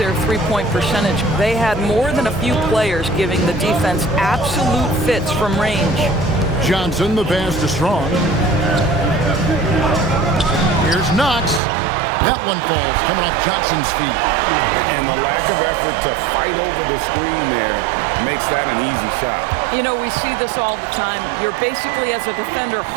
three-point percentage. They had more than a few players giving the defense absolute fits from range. Johnson, the pass to Strong. Here's Knox. That one falls, coming off Johnson's feet. And the lack of effort to fight over the screen there makes that an easy shot. You know, we see this all the time. You're basically, as a defender,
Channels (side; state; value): left; drops out; at 11.6 s